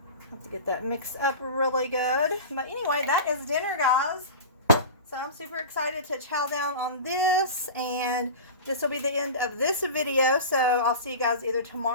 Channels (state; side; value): inverted; both; correlation -0.32